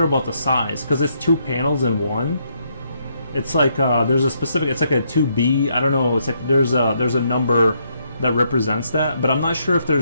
about the size, because it's 2 panels in one. It's like there's a specific. It's like a 2B. I don't know. It's like there's a number that represents that, but I'm not sure if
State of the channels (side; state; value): both; inverted; correlation -0.75